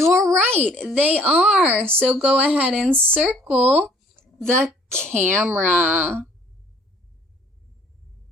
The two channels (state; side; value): normal; both; correlation 0.57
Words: right, they are. So go ahead and circle the camera.